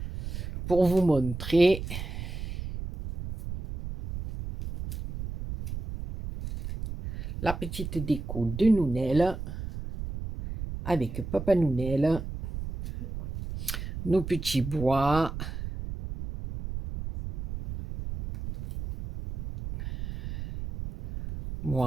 pour vous montrer. La petite déco de Nounel avec Papa Nounel, nos petits bois.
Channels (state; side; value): noise; right; rumble, 7 dB below the sound